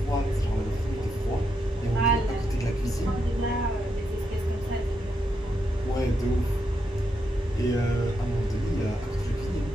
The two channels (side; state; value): both; normal; correlation 0.81